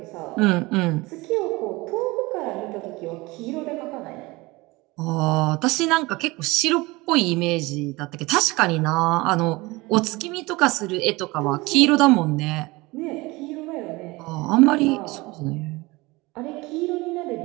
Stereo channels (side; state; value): left; quieter; 22.5 dB